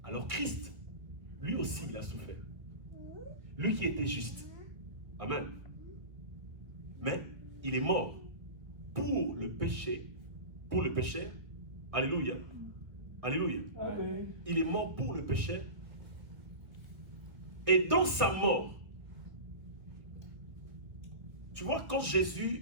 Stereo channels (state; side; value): late; left; 1.6 ms